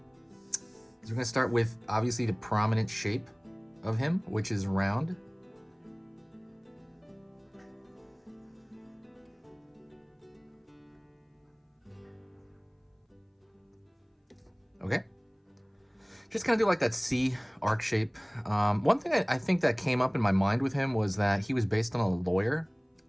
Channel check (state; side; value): identical; both; correlation 1.00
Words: is we're gonna start with obviously the prominent shape of him, which is round. Okay, just kind of do like that C arc shape. One thing I think that came up in my mind with him was that he was based on a lawyer